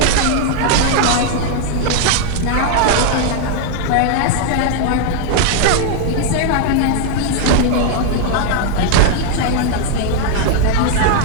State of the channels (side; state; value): both; different; correlation 0.00